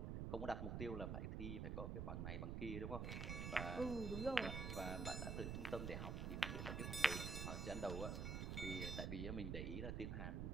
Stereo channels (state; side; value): noise; right; rumble, 1 dB below the sound